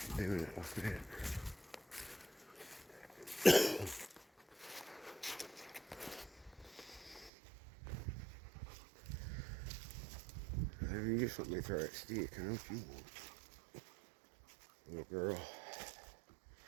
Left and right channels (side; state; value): left; drops out; at 7.3 s